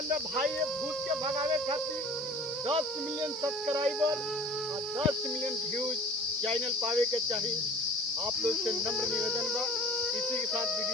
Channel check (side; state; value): both; normal; correlation 0.44